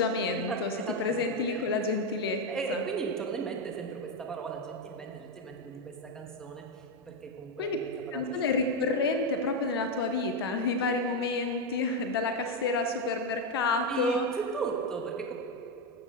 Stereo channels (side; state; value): both; normal; correlation 0.06